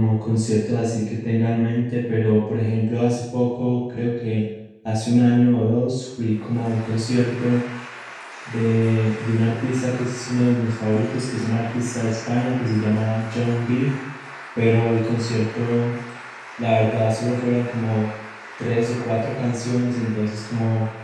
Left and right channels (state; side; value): identical; both; correlation 1.00